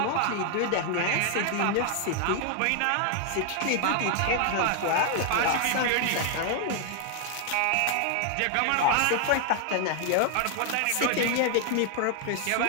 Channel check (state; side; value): different; both; correlation 0.00